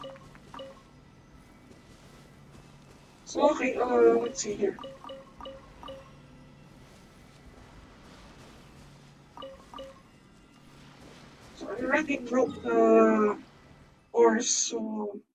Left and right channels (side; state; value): both; identical; correlation 1.00